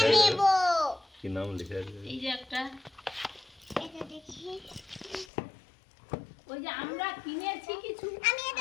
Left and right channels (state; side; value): drops out; right; at 5.2 s